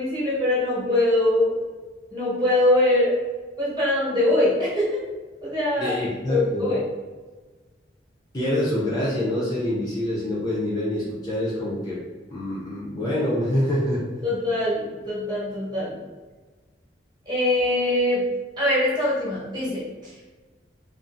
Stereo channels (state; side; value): normal; both; correlation 0.42